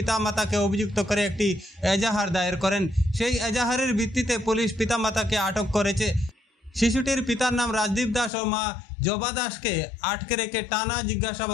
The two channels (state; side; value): drops out; right; at 8.3 s